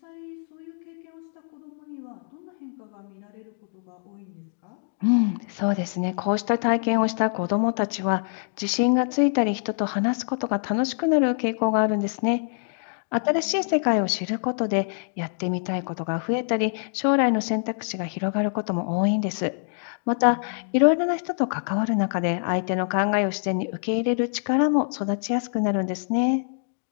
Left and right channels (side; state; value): right; silent; 62 dB below the other